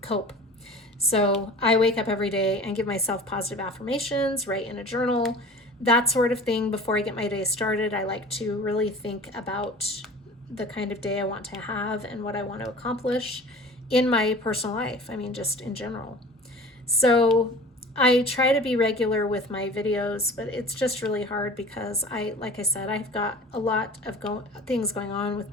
cope. So I wake up every day and give myself positive affirmations, write in a journal, that sort of thing. Before I get my day started, I like to really think about the kind of day I want to have and what I want to accomplish in my personal life. I mean, just in general. So I try to be regular with my videos, but it's just really hard because like I said, I've got a lot of things going on with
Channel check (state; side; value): normal; both; correlation 0.41